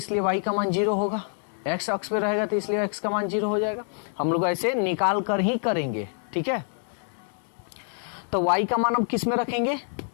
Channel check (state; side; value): silent; right; 56 dB below the other